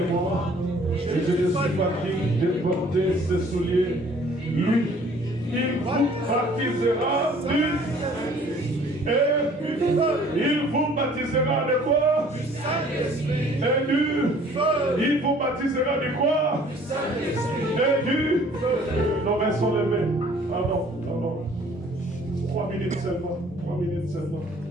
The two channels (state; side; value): normal; both; correlation 0.55